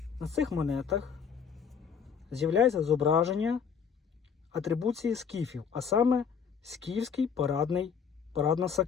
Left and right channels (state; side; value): quieter; right; 6.8 dB